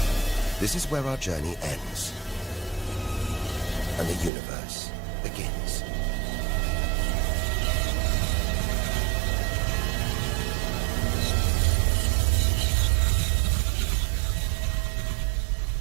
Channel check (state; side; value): drops out; left; at 4.3 s